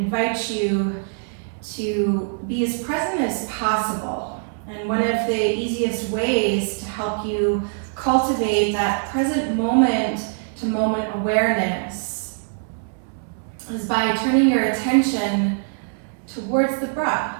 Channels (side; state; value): left; silent; 64 dB below the other